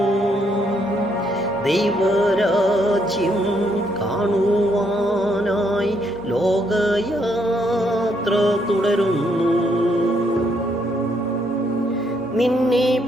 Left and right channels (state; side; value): normal; both; correlation 0.73